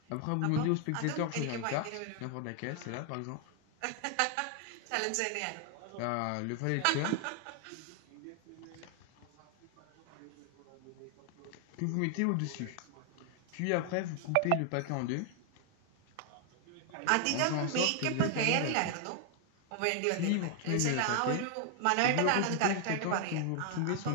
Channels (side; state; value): both; different; correlation 0.00